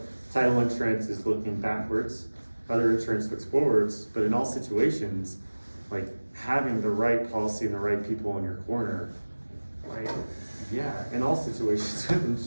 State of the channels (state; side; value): inverted; both; correlation -1.00